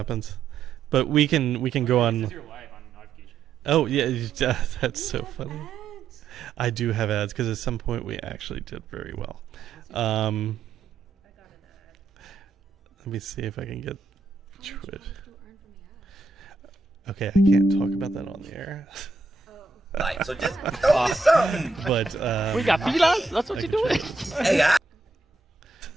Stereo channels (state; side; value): quieter; left; 4.0 dB